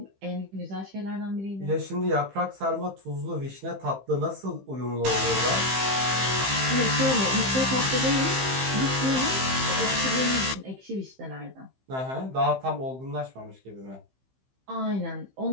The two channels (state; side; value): late; left; 15 ms